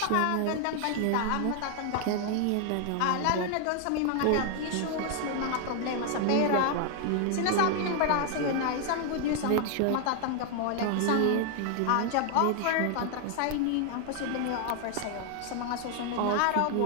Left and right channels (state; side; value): different; both; correlation 0.00